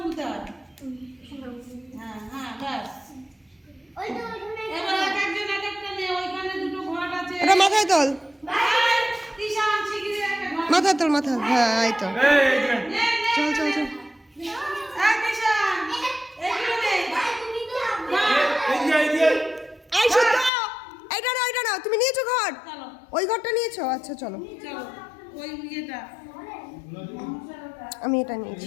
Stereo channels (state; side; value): drops out; right; at 20.5 s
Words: হয়। হ্যাঁ হ্যাঁ ব্যাস। ওই তো ওখানে এবার এক একজন এক একটা নে, ওইখানে দুটো ঘট আছে। এটা মাথায় তোল, এই, তিশান শিগগিরই একটা ঘট মাথায় তোল, মাথায়। হ্যাঁ এই তো, এই যে নে, নে। চল চল চল। এই তিশান, এইগুলো নে। এই যে এই শুদ্ধ, এইটা না, তুমি নিয়েছো ঘর? চলো ওই ঘরটা নিয়েছো? আচ্ছা চলো, চলো ওই ইয়েটা আমি এটা